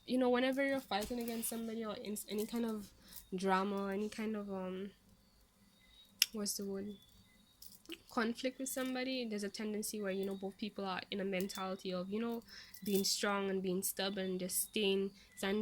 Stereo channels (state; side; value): identical; both; correlation 1.00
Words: whenever you're fighting against somebody, or in any kind of drama, any kind of what's the word, conflict with somebody, there's a tendency where both people are in a mentality of being strong and being stubborn and just